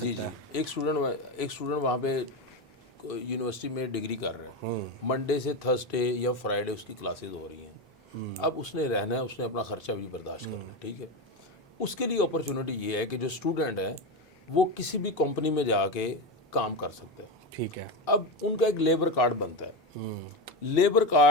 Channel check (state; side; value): normal; both; correlation 0.16